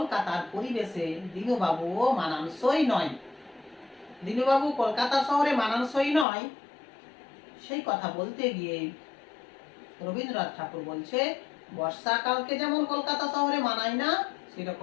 পরিবেশে দিনুবাবুও মানানসই নয়। দিনুবাবু কলকাতা শহরে মানানসই নয়, সেই কথা বলতে গিয়ে রবীন্দ্রনাথ ঠাকুর বলছে বর্ষাকালকে যেমন কলকাতা শহরে মানায় না,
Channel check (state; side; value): drops out; right; at 6.2 s